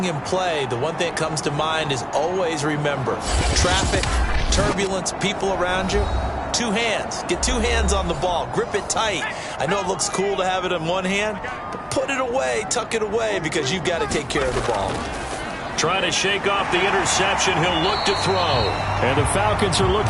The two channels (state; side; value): identical; both; correlation 1.00